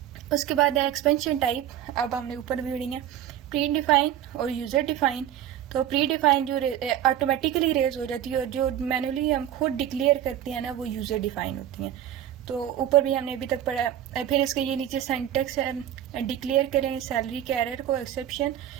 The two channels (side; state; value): left; quieter; 10.9 dB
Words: उसके बाद है एक्सपेंशन टाइप, अब हमने ऊपर भी पढ़ी है प्री डिफाइन और यूजर डिफाइन। तो प्री डिफाइन जो ऑटोमेटिकली रेज हो जाती है और जो मैनुअली हम खुद डिक्लेयर करते हैं ना वो यूजर डिफाइन होती हैं। तो ऊपर भी हमने अभी तक पढ़ा। फिर इसके ये नीचे सेंटेक्स है, डिक्लेयर करें सैलरी के एरर को एक्सेप्शन,